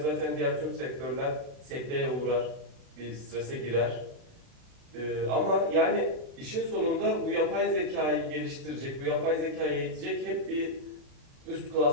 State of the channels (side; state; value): left; late; 36 ms